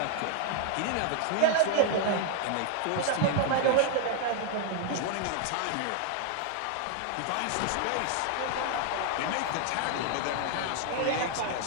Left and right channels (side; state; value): both; different; correlation 0.00